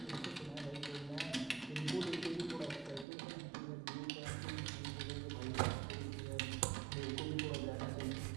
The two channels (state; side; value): drops out; left; at 3.1 s